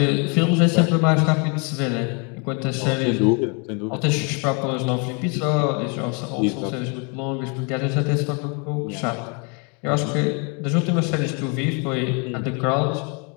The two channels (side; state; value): right; quieter; 34.8 dB